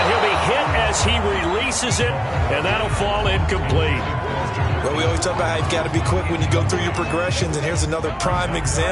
As he releases it, and that'll fall incomplete. Well, we always talk about how you've got to be quick when you go through your progressions, and here's another prime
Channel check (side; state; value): both; identical; correlation 1.00